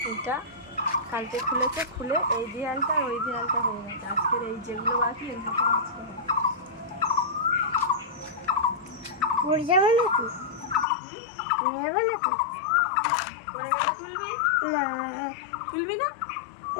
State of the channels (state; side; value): drops out; right; at 10.9 s